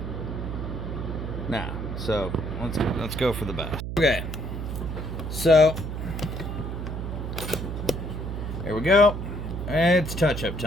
Nah. So let's go for the best. Okay, so here we go. It's touch-up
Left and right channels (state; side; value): noise; right; hum, 5 dB below the sound